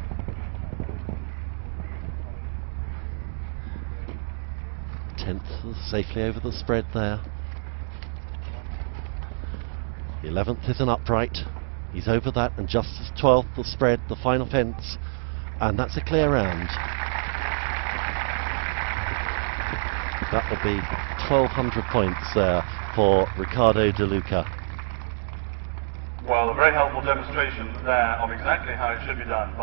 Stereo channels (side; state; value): left; silent; digital silence